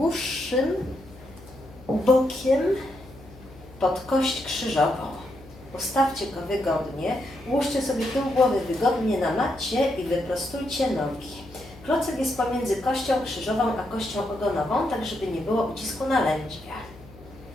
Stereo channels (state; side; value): noise; left; hum, 20 dB below the sound